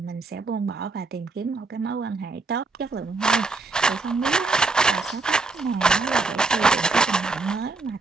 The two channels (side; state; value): left; quieter; 3.7 dB